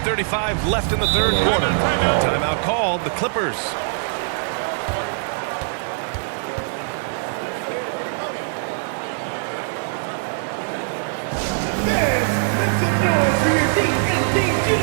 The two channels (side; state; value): left; silent; digital silence